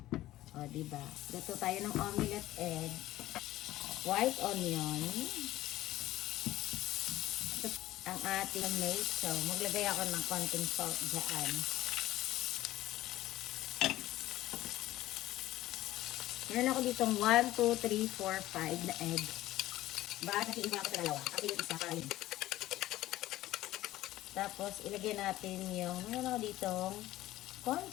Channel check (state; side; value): quieter; right; 15.7 dB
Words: O, diba? Luto tayo ng omelette egg. White onion. Ang ating tomato. Maglagay ako ng konting salt dyan. Meron ako ditong 1, 2, 3, 4, 5 na egg. Bakit nakiiba ako sa dalawa? Ako yung isa para yun. Tapos, ilagay natin yung, meron ako ditong